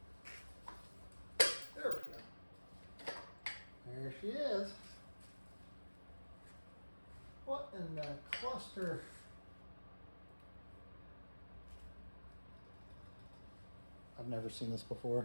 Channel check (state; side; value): inverted; both; correlation -1.00